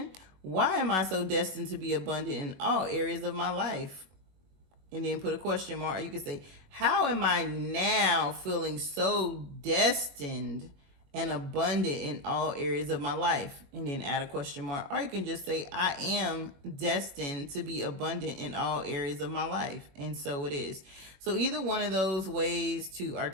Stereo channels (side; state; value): left; late; 21 ms